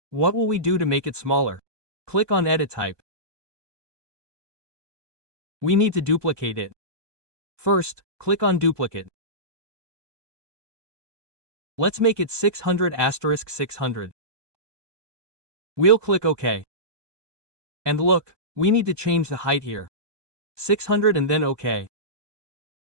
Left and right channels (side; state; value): left; late; 1.2 ms